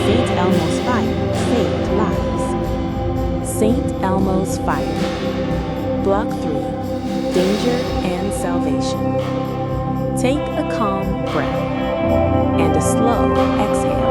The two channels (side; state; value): both; identical; correlation 1.00